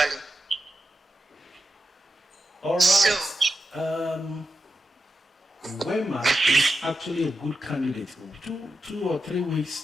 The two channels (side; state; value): both; normal; correlation 0.89